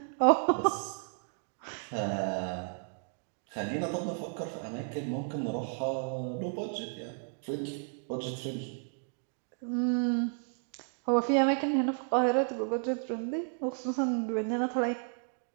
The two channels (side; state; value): left; silent; 56 dB below the other